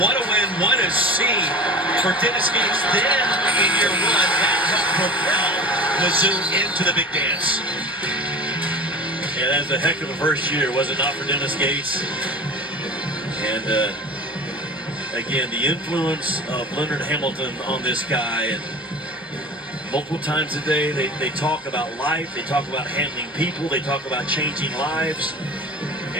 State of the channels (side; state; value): both; normal; correlation 0.36